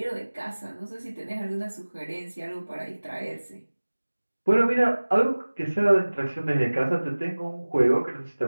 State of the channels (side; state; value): both; inverted; correlation -1.00